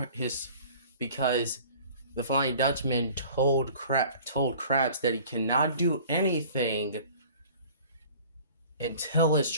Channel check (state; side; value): inverted; both; correlation -0.47